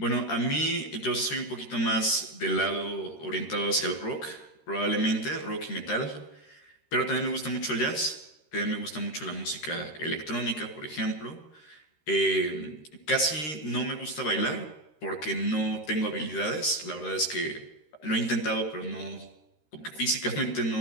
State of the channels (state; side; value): late; right; 13 ms